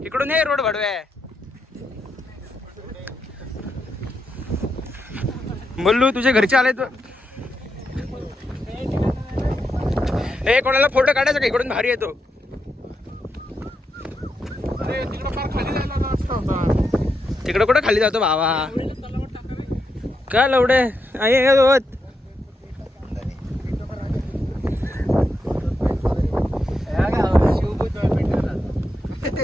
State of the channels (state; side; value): normal; both; correlation 0.84